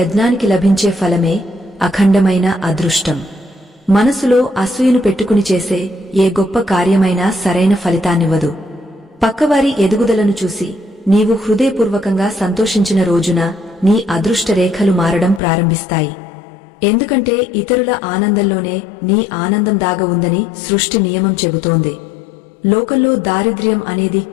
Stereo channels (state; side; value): drops out; right; at 15.4 s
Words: లభించే ఫలమే అఖండమైన అదృష్టం. మనసులో అసూయను పెట్టుకుని చేసే ఏ గొప్ప కార్యమైనా సరైన ఫలితాన్నివ్వదు. పక్కవారి ఎదుగుదలను చూసి నీవు హృదయపూర్వకంగా సంతోషించిన రోజున నీ అదృష్ట రేఖలు మారడం ప్రారంభిస్తాయి. ఎందుకంటే ఇతరుల ఆనందంలోనే నీ ఆనందం దాగ ఉందని సృష్టి నియమం చెబుతోంది. లోకంలో దారిద్ర్యం అనేది